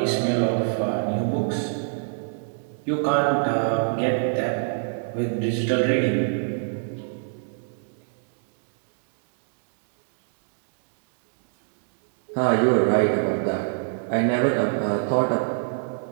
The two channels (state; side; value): silent; left; digital silence